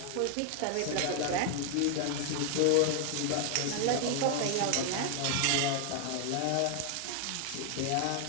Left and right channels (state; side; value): different; both; correlation 0.00